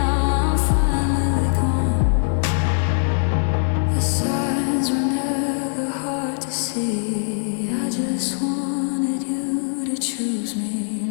I'm finally gone. The signs were never hard to see. I just wanted you to choose me.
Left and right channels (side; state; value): right; silent; digital silence